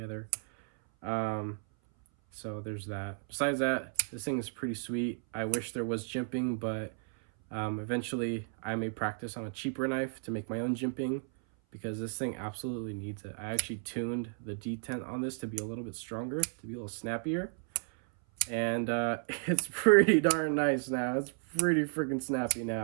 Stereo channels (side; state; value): left; silent; 56 dB below the other